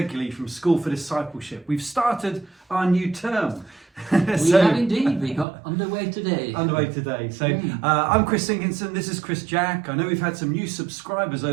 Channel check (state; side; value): drops out; left; at 5.5 s